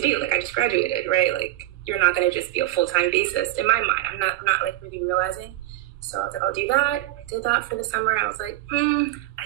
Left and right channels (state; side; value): quieter; left; 15.6 dB